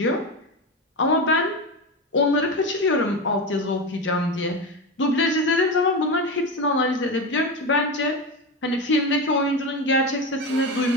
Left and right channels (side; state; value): both; normal; correlation 0.19